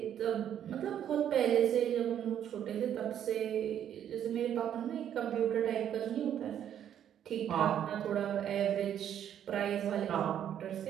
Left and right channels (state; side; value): quieter; left; 9.9 dB